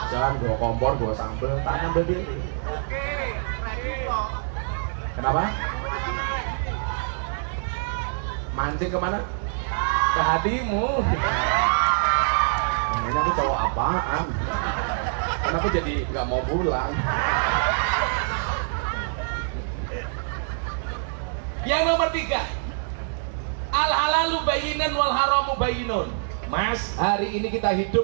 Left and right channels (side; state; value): left; silent; digital silence